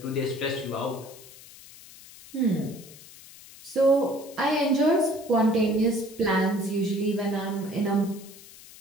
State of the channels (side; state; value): left; noise; hiss, 19 dB below the sound